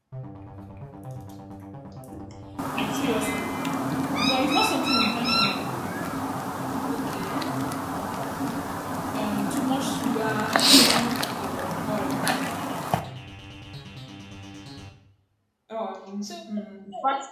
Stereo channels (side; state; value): both; identical; correlation 1.00